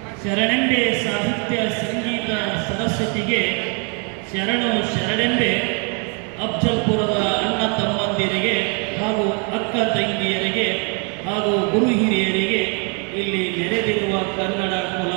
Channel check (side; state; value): left; quieter; 36.7 dB